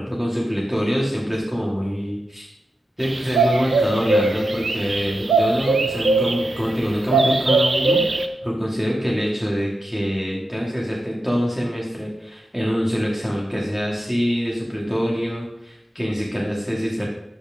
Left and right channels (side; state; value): both; normal; correlation 0.88